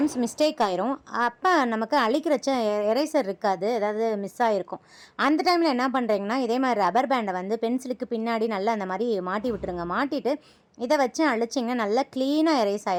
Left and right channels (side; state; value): both; identical; correlation 1.00